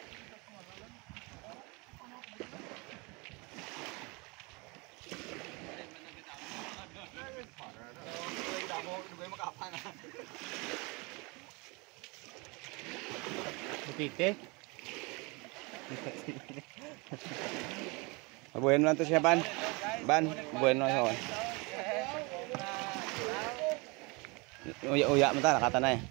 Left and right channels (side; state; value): left; quieter; 27.9 dB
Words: Butite. Bueno lang to siya ban. Bueno siya. Uya mo ta nakata na eh.